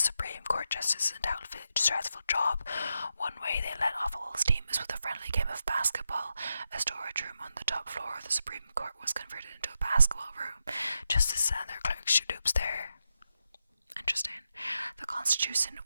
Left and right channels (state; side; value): inverted; both; correlation -0.86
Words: Court justice is undoubtedly a stressful job. One way they let off a little steam is with a friendly game of basketball. A storage room on the top floor of the Supreme Court was converted into a basketball room. Justices and their clerks shoot hoops there. Interesting. The Constitution